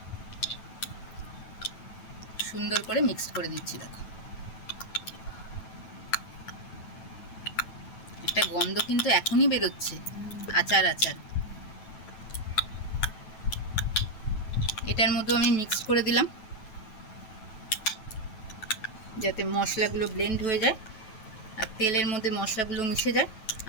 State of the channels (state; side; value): late; right; 9.1 ms